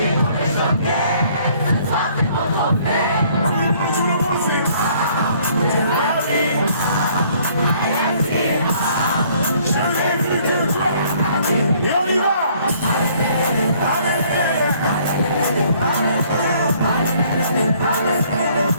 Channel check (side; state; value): both; inverted; correlation -0.61